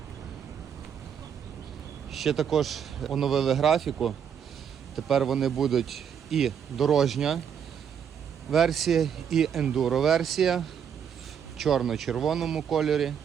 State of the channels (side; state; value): left; quieter; 8.0 dB